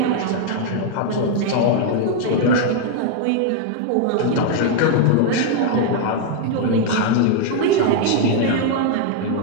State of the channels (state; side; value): different; both; correlation 0.00